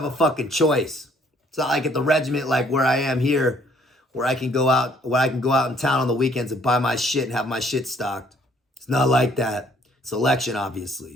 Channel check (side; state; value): both; normal; correlation 0.62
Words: a fucking choice. It's not like at the regiment, like where I am here, where I can go out in town on the weekends and buy my shit and have my shit stocked. It's not like that. Selection,